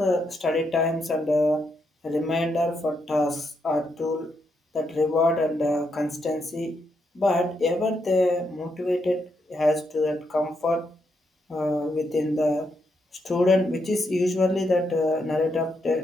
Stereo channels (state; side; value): normal; both; correlation 0.80